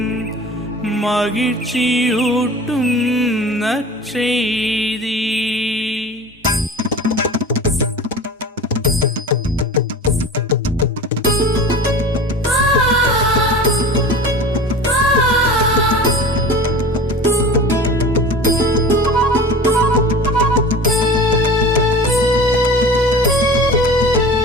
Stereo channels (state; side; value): normal; both; correlation 0.36